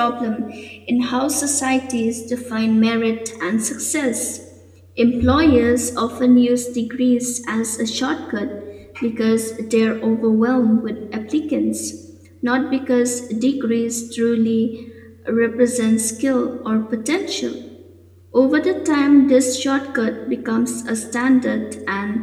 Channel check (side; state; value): both; identical; correlation 1.00